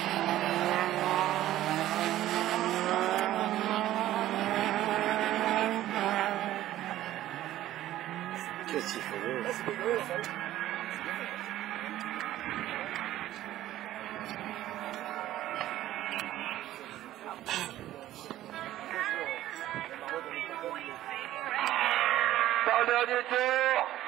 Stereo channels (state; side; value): quieter; left; 13.9 dB